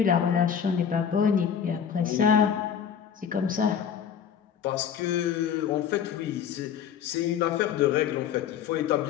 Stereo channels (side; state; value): right; quieter; 8.1 dB